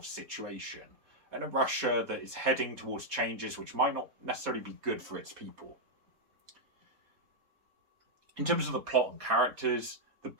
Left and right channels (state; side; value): late; left; 4.2 ms